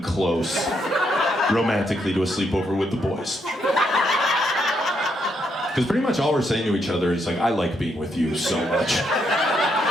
close romantically to a sleepover with the boys. Because pretty much all we're saying to each other is like, I like being with you so much.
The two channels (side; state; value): both; normal; correlation 0.77